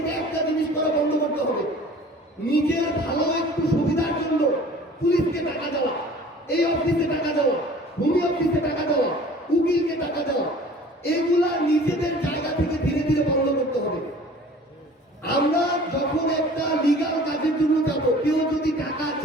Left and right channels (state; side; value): normal; both; correlation 0.46